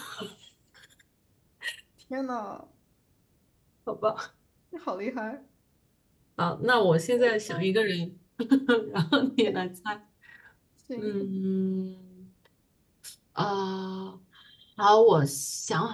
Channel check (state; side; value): identical; both; correlation 1.00